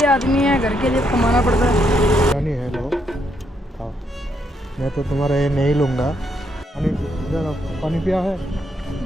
आदमी है, घर के लिए कमाना पड़ता है। बिरयानी है, लो खाओ। मैं तो तुम्हारा ये नहीं लूँगा। पानी इधर आओ, पानी पिया है?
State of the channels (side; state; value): both; normal; correlation 0.76